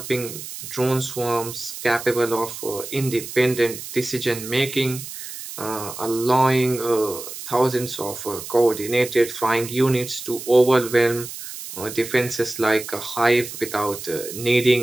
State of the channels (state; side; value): noise; right; hiss, 10 dB below the sound